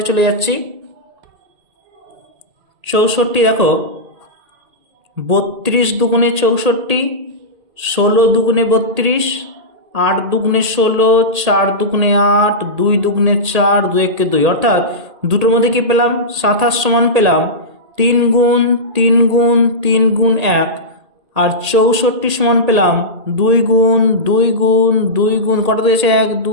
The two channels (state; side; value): late; left; 1.8 ms